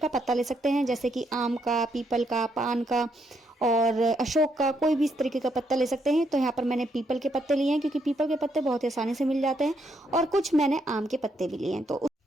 पत्ता ले सकते हैं, जैसे कि आम का, पीपल का, पान का और अशोक का, कोई भी इस तरीके का पत्ता ले सकते हैं। तो यहाँ पर मैंने पीपल के पत्ते लिए हैं, क्योंकि पीपल के पत्ते बहुत ही आसानी से मिल जाते हैं, और कुछ मैंने आम के पत्ते भी लिए हैं।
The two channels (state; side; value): normal; both; correlation 0.75